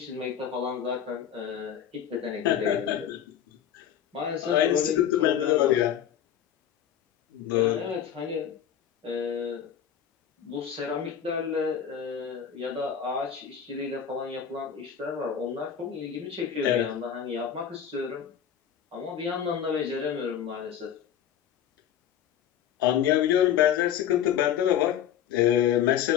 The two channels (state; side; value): quieter; right; 9.4 dB